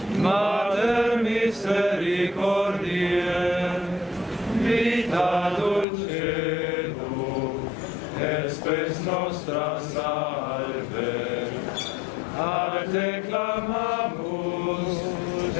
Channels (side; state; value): right; drops out; at 5.9 s